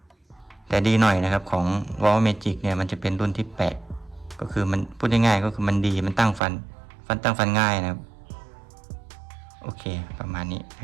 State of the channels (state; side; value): drops out; left; at 6.4 s